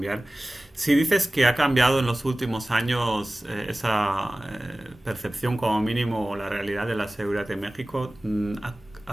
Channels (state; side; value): normal; both; correlation 0.98